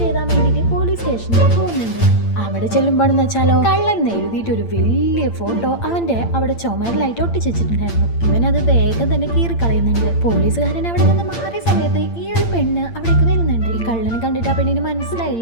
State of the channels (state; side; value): late; right; 8.8 ms